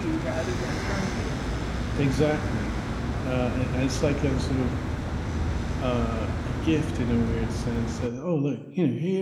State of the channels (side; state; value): both; identical; correlation 1.00